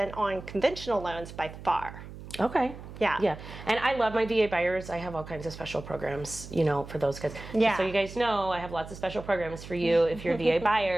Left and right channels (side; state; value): right; noise; hum, 14 dB below the sound